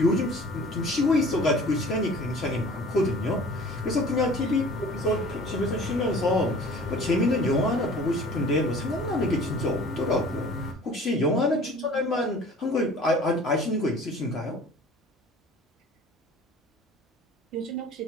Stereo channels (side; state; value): both; normal; correlation 0.47